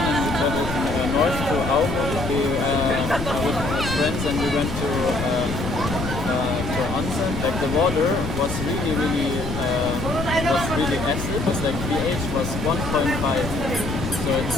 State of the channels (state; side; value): noise; left; rumble, 6 dB below the sound